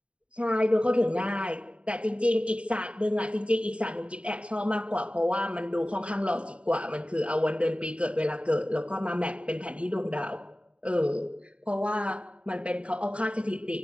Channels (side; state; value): left; late; 0.061 ms